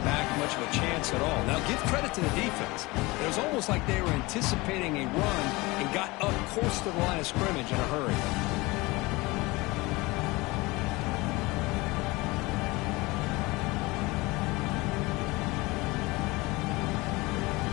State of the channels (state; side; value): quieter; right; 22.7 dB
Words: back much of a chance at all. Now, give credit to the defense. It was almost like they were anticipating a run and got up close to the line of scrimmage in a hurry.